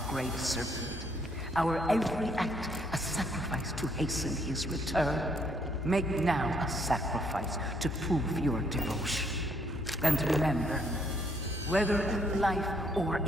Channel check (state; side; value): normal; both; correlation 0.69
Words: Great Serpent. Our every act a sacrifice to hasten his return. Make now a sacrifice to prove your devotion. And remember, whether in life or